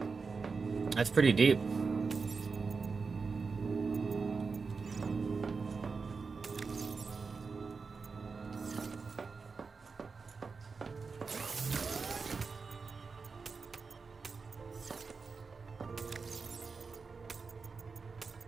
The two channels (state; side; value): quieter; left; 4.8 dB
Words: That's pretty deep.